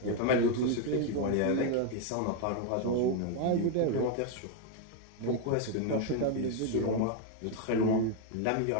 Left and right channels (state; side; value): different; both; correlation 0.01